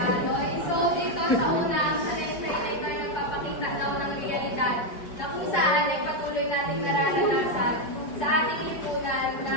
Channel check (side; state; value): right; late; 4.8 ms